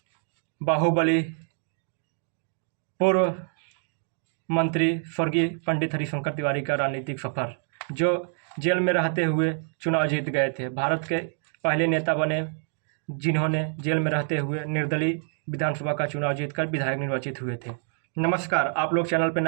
बाहुबली पूर्व मंत्री स्वर्गीय पंडित हरिशंकर तिवारी का राजनीतिक सफर, जो जेल में रहते हुए चुनाव जीत गए थे। भारत के पहले नेता बने जिन्होंने जेल में रहते हुए निर्दलीय विधानसभा का चुनाव जीतकर विधायक निर्वाचित हुए थे। नमस्कार, आप लोग चैनल पर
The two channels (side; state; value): left; silent; 60 dB below the other